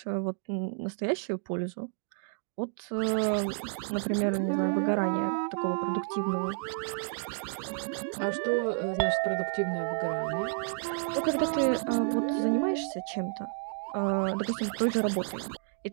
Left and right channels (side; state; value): left; silent; 56 dB below the other